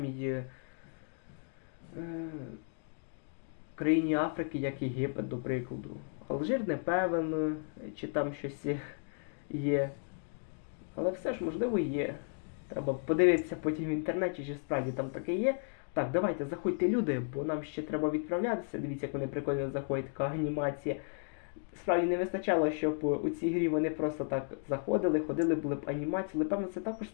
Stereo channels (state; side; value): silent; right; 55 dB below the other